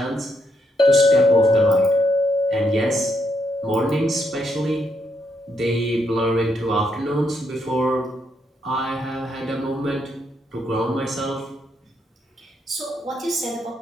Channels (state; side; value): normal; both; correlation 0.77